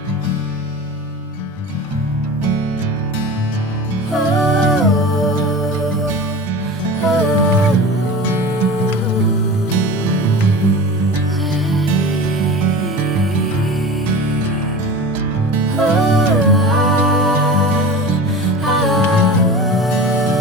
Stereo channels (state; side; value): normal; both; correlation 0.33